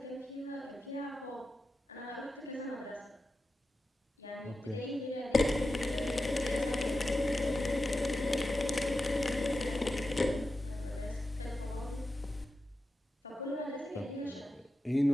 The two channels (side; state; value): both; normal; correlation 0.91